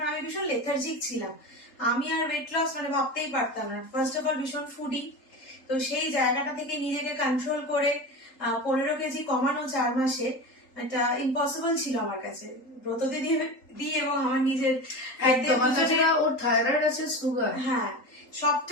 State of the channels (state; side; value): late; right; 3.8 ms